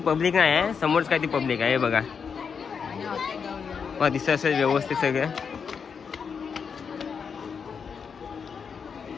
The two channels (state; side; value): quieter; right; 6.3 dB